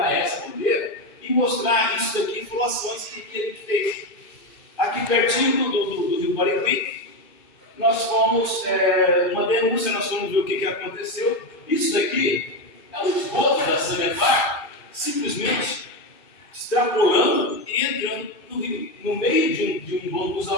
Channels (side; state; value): right; late; 2.4 ms